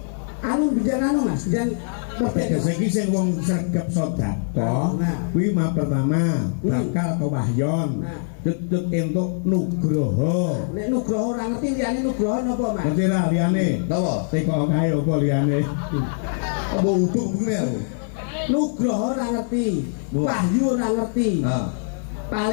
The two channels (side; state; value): right; silent; digital silence